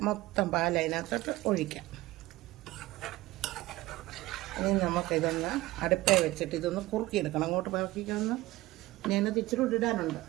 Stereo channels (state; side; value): quieter; left; 18.4 dB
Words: മൊത്തം പാൽ അതിനകത്തോട്ട് ഒഴിക്കാം. ഇനി നമുക്കിതൊന്ന് അടുപ്പേ വെച്ചിട്ട് ഇതൊന്ന് കുറുക്കിയെടുക്കണം. അങ്ങോട്ട് പറക്കിക്കൊന്ന് ഞാനത് ഇച്ചിരി ഇടാനുണ്ട്,